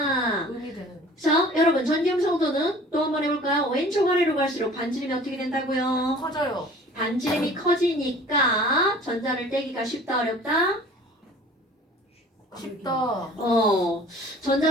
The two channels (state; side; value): normal; both; correlation 0.47